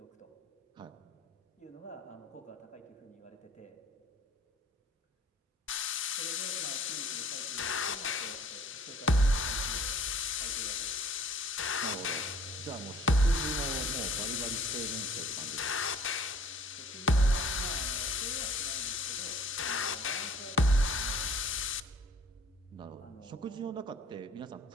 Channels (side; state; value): both; normal; correlation 0.53